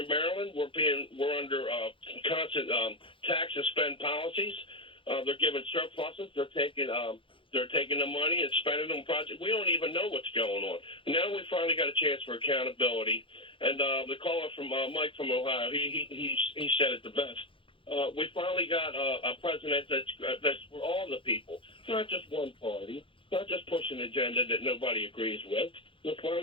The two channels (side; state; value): right; late; 0.25 ms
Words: Maryland. We're under constant tax and spend policies. They're giving surpluses. They're taking the money and spending them on projects. We don't even know what's going on. Now we finally got a chance for accountability. And the caller from Mike from Ohio, he said it the best. We finally got a president that's for all the people. It's not just one party. It's not just pushing an agenda that nobody agrees with. We're